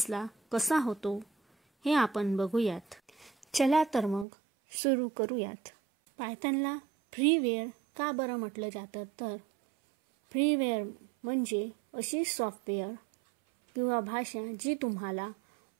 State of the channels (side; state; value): left; drops out; at 4.2 s